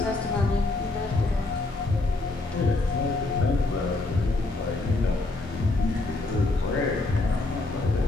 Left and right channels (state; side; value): quieter; right; 3.1 dB